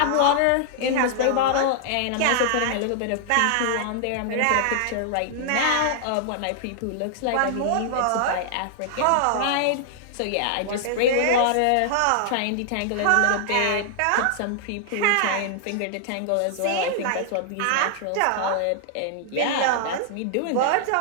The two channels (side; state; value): both; different; correlation -0.01